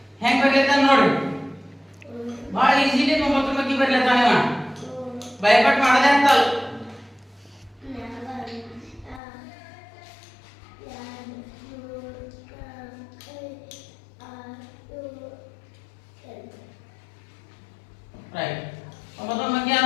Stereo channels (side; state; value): right; drops out; at 9.2 s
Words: ಹೆಂಗ್ ಬರೆಯತಾನ ನೋಡಿ. ಬಹಳ ಈಜಿಲಿ 9ರ ಬಗ್ಗೆ ಬರೆಯತಾನ ಇವ. ಭಯಪಟ್ಟು ಮಾಡದೆ ಅಂತಲ್ಲ. ರೈಟ್. 9ರ ಬಗ್ಗೆ